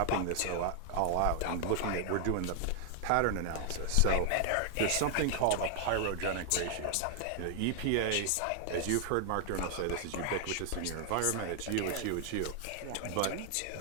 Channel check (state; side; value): different; both; correlation 0.00